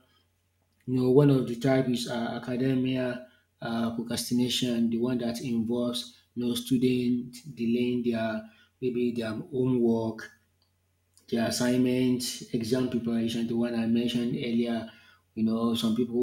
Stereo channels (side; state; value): both; identical; correlation 1.00